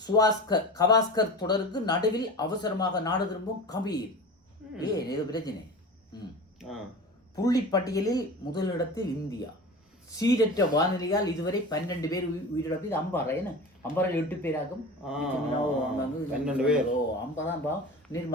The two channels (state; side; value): normal; both; correlation 0.33